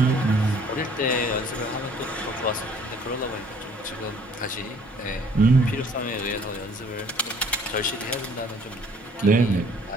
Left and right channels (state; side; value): normal; both; correlation 0.57